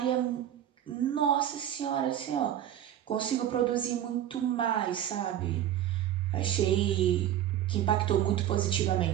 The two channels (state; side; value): quieter; left; 11.2 dB